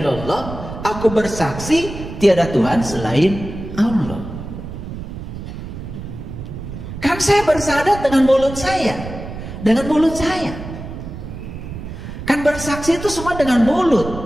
aku bersaksi tiada Tuhan selain Allah. Kan saya bersyahadat dengan mulut saya. Dengan mulut saya. Kan bersaksi itu semua dengan mulut.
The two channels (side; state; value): right; noise; rumble, 10 dB below the sound